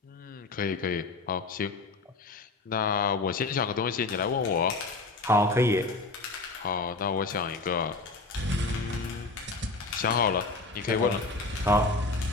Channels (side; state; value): right; quieter; 3.4 dB